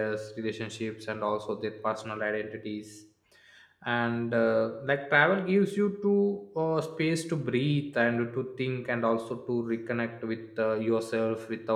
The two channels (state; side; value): identical; both; correlation 1.00